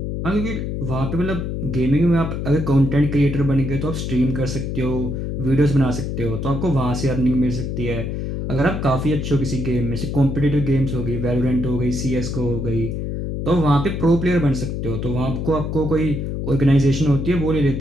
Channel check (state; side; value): noise; left; hum, 3 dB below the sound